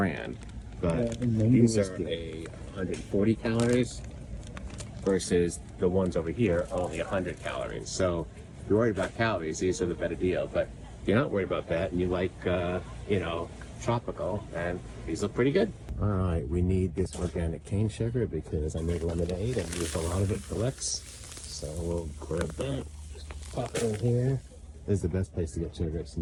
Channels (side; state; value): both; identical; correlation 1.00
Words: but these are 140 calories versus the ones over here are only 100 calories. So if you're worried about calories, these are the better deal. But if you're not worried about that and you like, tropical, and these look pretty good. All right, we need this organic cane sugar because I made lemonade and used a lot of it for Lex. So we'll grab that, just pop it in here. This is the best place to get sugar. It's